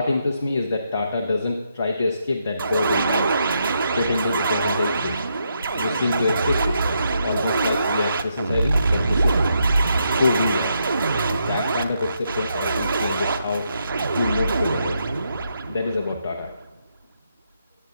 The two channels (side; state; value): both; inverted; correlation -0.79